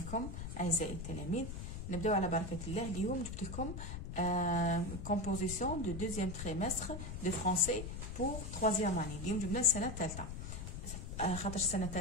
اعزائي التلاميذ. نبداو على بركه الله. اليوم جبت لكم كومبوزيسيون دو دوزيام تريمستر دو فرونسي بور تروازيام اني. اليوم جبنا السنه الثالثه، خاطر السنه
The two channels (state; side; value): noise; left; rumble, 7 dB below the sound